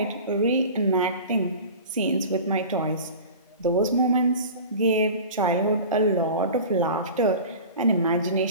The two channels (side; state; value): both; inverted; correlation -0.37